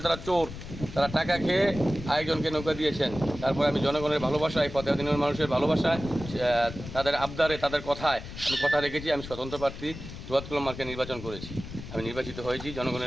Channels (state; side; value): noise; left; rumble, 11 dB below the sound